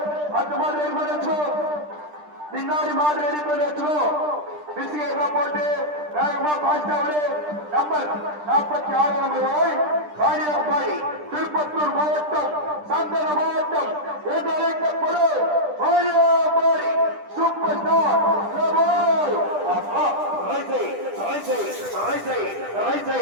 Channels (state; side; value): late; left; 10 ms